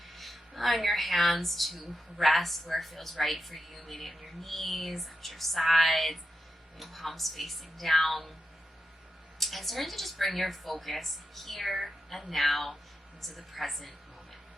Allowing your hands to rest where it feels right for you, maybe on your knees, at your sides, your palms facing down. And starting to just bring your focus here and now into the present moment.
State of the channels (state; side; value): normal; both; correlation 0.88